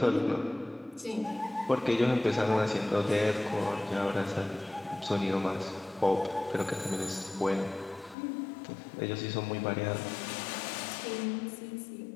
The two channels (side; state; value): right; drops out; at 8.2 s